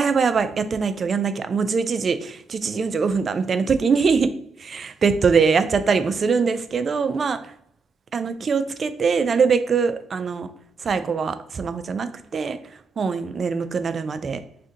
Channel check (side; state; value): left; quieter; 5.0 dB